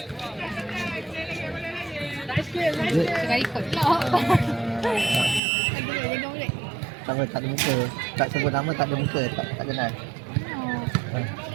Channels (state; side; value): drops out; left; at 5.4 s